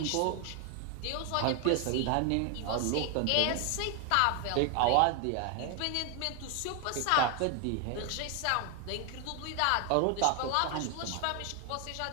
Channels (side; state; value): both; different; correlation 0.01